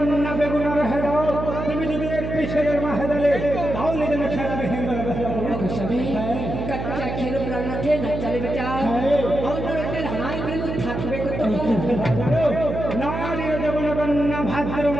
বেগুনার হেদাও তুমি যদি একটি ছেলের মা হেদালে তাহলে যেন খেলাবে কাচ্চা খেলো প্রাণনাথে না চালে বেটা অন্যরতের হাই প্রেম থাকবে কত নারী দেবন কন্যা ভাদ্র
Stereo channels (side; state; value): right; noise; hum, 5 dB below the sound